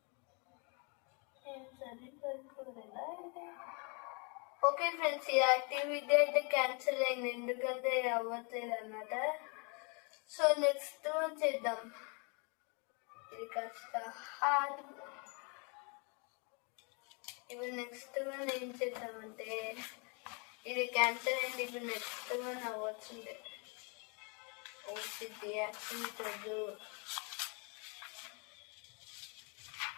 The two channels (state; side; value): quieter; right; 34.3 dB